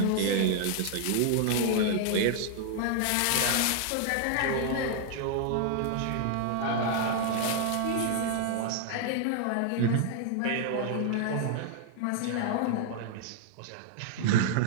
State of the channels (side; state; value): both; different; correlation 0.00